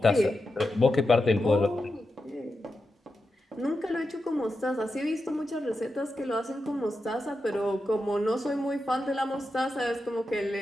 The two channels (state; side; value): normal; both; correlation 0.89